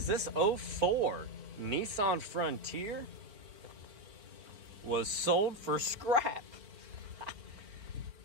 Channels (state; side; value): late; left; 4.8 ms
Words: this 04 Nissan Frontier was sold for scrap.